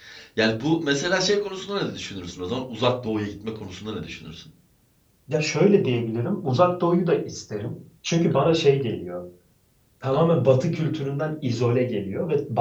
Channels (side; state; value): both; identical; correlation 1.00